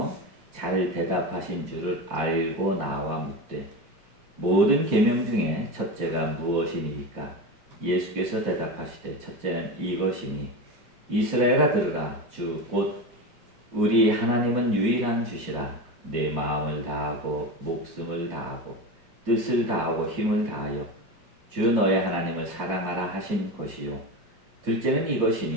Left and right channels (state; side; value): late; left; 4.9 ms